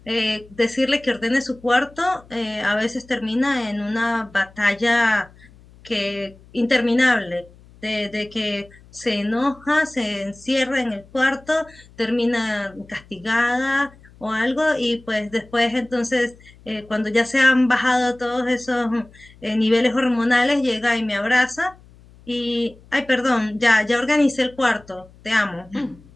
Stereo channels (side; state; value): left; noise; hum, 25 dB below the sound